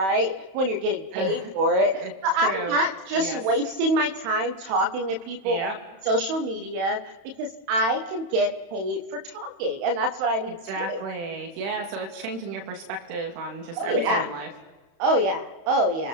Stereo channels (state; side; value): late; left; 31 ms